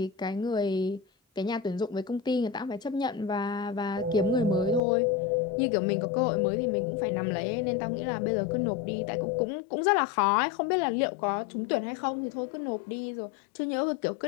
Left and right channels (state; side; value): drops out; right; at 4.8 s